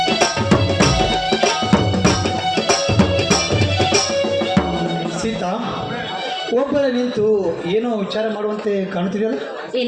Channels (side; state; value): both; identical; correlation 1.00